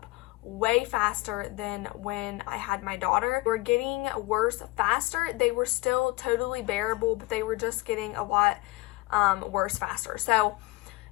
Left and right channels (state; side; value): quieter; right; 21.2 dB